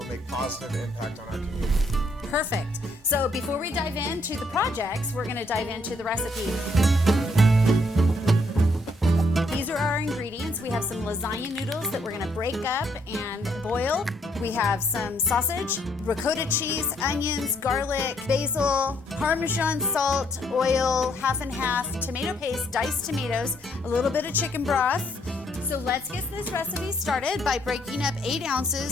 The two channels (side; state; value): both; normal; correlation 0.70